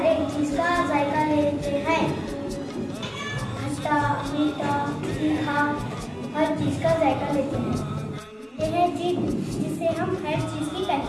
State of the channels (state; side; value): identical; both; correlation 1.00